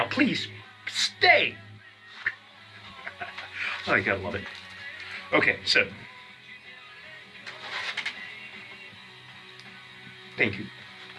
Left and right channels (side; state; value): both; identical; correlation 1.00